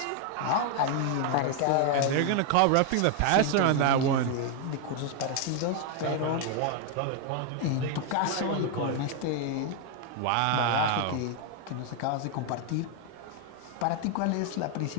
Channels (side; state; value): both; different; correlation 0.01